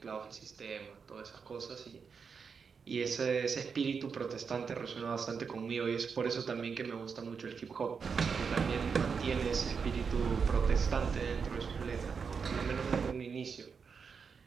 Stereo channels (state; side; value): quieter; left; 5.9 dB